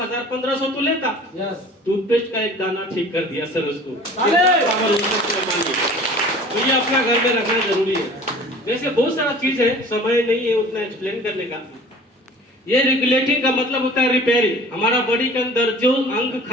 तो लेता। टूथपेस्ट का एक दाना ठीक कर दिया सर उसको। तो ये अपना घर में रखना जरूरी है। वैसे बहुत सारा चीज है, समय नहीं है उतना एक्सप्लेन करने का। ये रेगुलेटिंग का मतलब होता है रिपेयरिंग। हमारा बॉडी के अंदर जो अंग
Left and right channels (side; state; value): both; normal; correlation 0.45